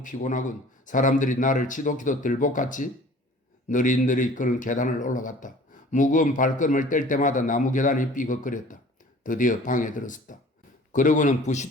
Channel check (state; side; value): normal; both; correlation 0.48